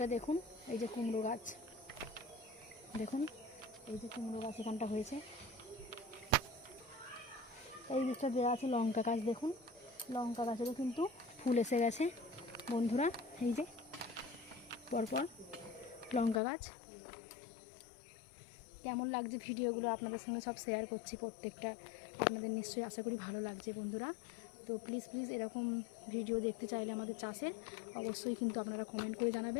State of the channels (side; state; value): right; drops out; at 16.4 s